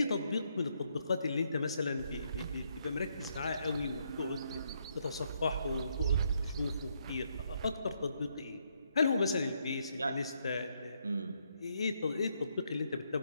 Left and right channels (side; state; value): both; inverted; correlation -0.75